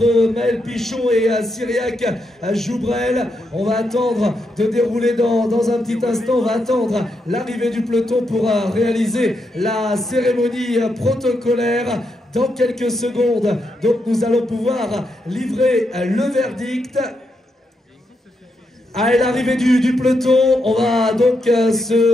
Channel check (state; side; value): normal; both; correlation 0.82